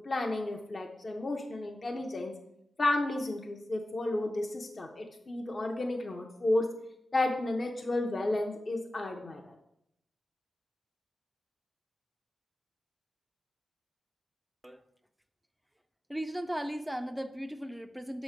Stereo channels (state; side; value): normal; both; correlation 0.94